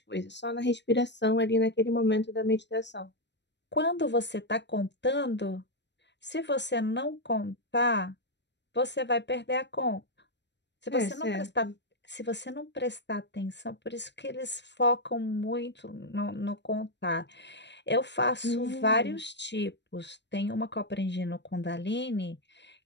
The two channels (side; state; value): right; late; 0.51 ms